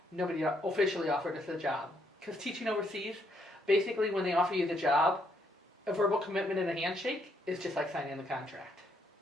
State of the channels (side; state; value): both; normal; correlation 0.73